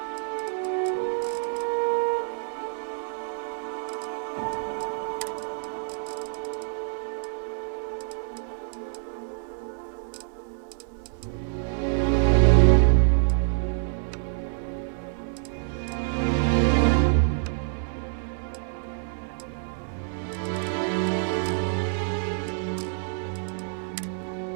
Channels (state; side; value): silent; left; 60 dB below the other